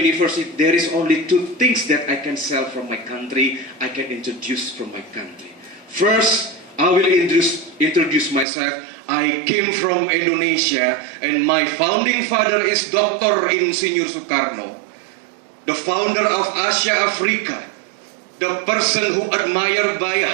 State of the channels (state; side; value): drops out; left; at 8.5 s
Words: there is only two things that I can sell from my country, I can introduce from my country. First, I will introduce myself. I came from Indonesia, and my founding father is Dr. Insinyur Soekarno, the founder of Asia Africa, the person who admired by